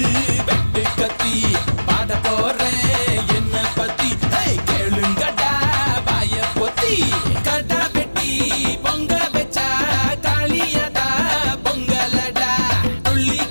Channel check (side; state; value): both; inverted; correlation -1.00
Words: வெட்டு கத்தி பாட போறேன் என்ன பத்தி கேளுங்கடா வாய பொத்தி கடா வெட்டி பொங்க வச்சா காளியதா பொங்கலடா